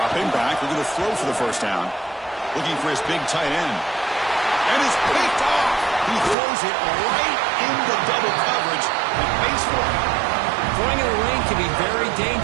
back, looking to throw for the first down. Looking for his big tight end. And it's picked off. He throws it right into double coverage and pays for it. Throwing in the lane can be very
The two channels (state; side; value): drops out; left; at 6.4 s